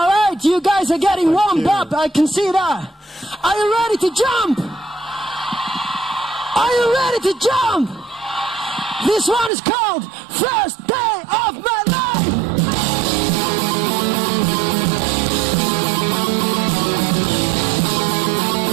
right, you guys are getting warmed up. I can see that. Are you ready to jump? Are you ready to jump? This one is called First Day of My Life.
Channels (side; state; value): left; drops out; at 9.5 s